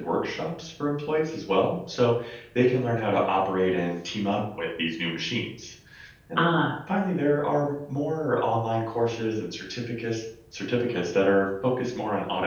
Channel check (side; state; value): both; identical; correlation 1.00